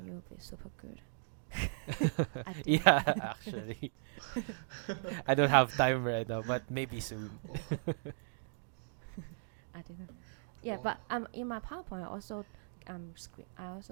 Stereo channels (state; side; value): silent; left; digital silence